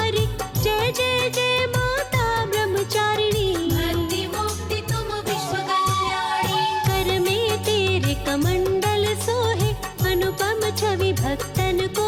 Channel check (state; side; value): identical; both; correlation 1.00